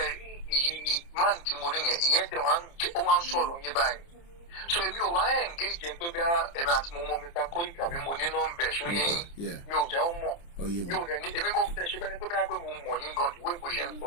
rí ìyí máàlì tí mo rí yẹn ìyẹn tẹ̀ ó wá ń sọ̀rọ̀ yín báyìí. So èmi ò wá engage jẹ́ pé bí ẹ̀mí àti mo mọ Mr. Koiki àbí mo ní nọ́mbẹ̀ ṣó yẹ yín mi ò jẹ́ ó mọ̀ mi ò dẹ̀ ní èmi kò fẹ́ ṣe bẹ́ni pé bí mo mọ̀ yín gan ìwé ìbò ṣe ń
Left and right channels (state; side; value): late; right; 29 ms